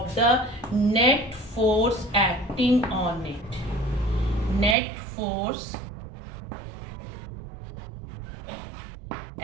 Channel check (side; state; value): left; drops out; at 4.8 s